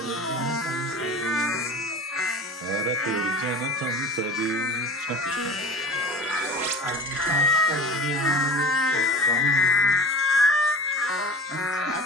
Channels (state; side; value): normal; both; correlation 0.36